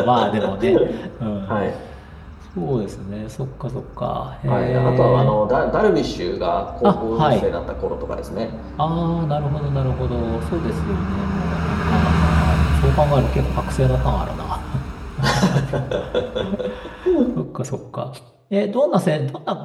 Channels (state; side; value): identical; both; correlation 1.00